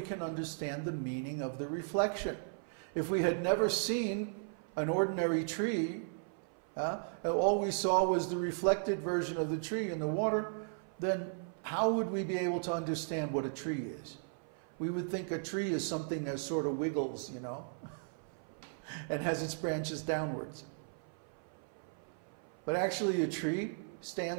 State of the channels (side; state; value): left; silent; 54 dB below the other